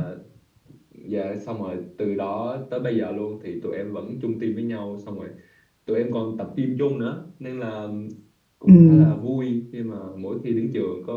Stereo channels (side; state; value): both; identical; correlation 1.00